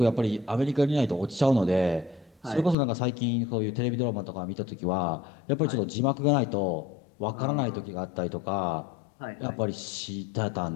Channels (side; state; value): right; drops out; at 2.8 s